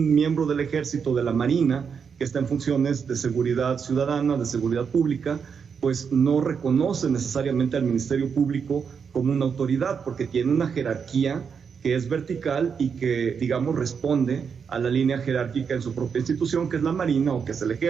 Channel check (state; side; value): quieter; left; 6.4 dB